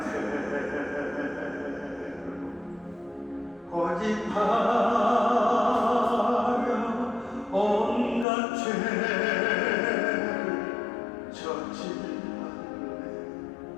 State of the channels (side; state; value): right; drops out; at 8.2 s